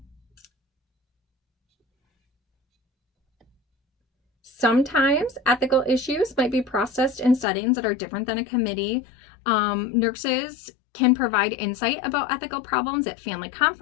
Sometimes ethical issues might be processed in settings that are different than a committee. Nurses can provide insight about ethical problems at family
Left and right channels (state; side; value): drops out; right; at 7.5 s